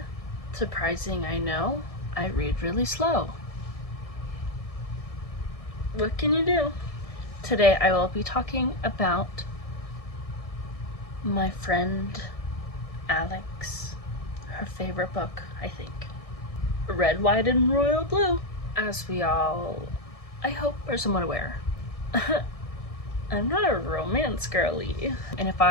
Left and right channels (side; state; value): right; late; 1.6 ms